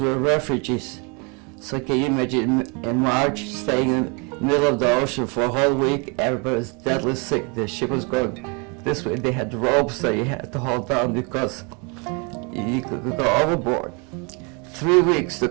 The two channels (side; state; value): left; quieter; 32.4 dB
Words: we were refugees. So can you imagine in March, staying in the middle of the ocean for a whole week, everybody was deadly sick. The ship was going this way. They had ropes that you had to hold down because you could go overboard. 3 weeks